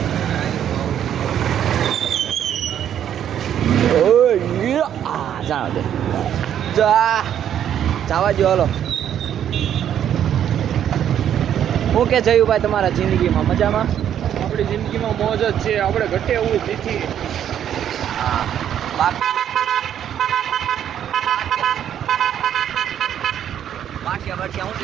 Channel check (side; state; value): left; quieter; 9.9 dB